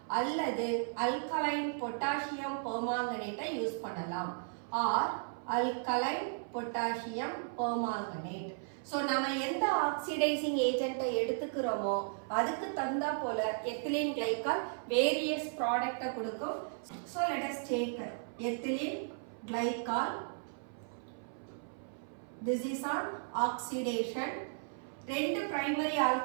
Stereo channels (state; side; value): silent; left; 54 dB below the other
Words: அல்லது அல்கலைன் பொட்டாசியம் பெர்மாங்கனேட்டை யூஸ் பண்ணலாம் or alkaline potassium permanganate. So நம்ம எந்த ஆக்சிடைசிங் ஏஜென்ட்டை எடுத்துக்கிறோமோ அதுக்கு தகுந்தா போல எத்திலீன் கிளைகால் வேரியஸ் ப்ராடக்ட்டை கொடுக்கும். So let us take ethylene glycol. This is on oxidation. ரெண்டு பிரைமரி